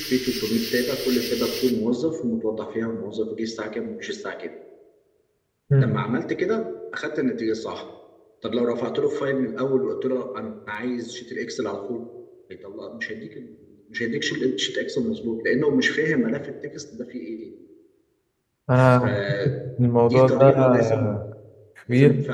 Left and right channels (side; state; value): both; identical; correlation 1.00